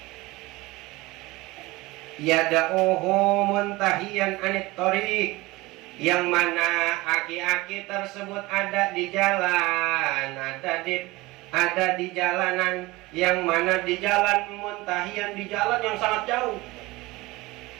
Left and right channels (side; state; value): left; quieter; 20.9 dB